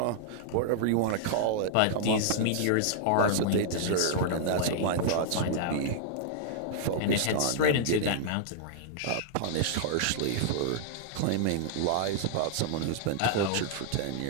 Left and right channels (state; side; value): different; both; correlation -0.01